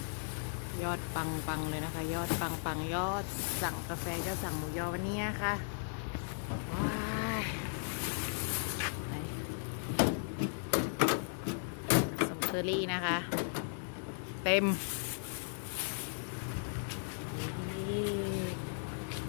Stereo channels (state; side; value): silent; right; digital silence